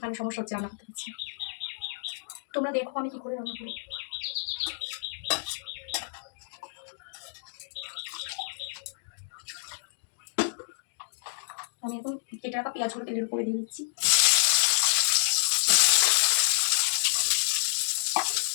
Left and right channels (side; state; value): right; silent; digital silence